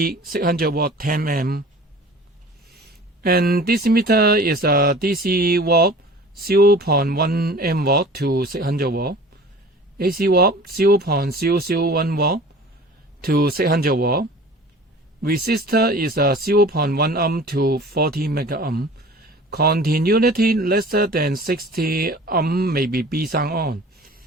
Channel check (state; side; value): normal; both; correlation 0.43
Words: 600V 10 and this meter is a DC watt 0.1 mW to 600V, AC watt 0.001V to 600V. Resistor is a 0.1 ohm to 40 megaohm. Continuity less than 60 ohm may be B sound on.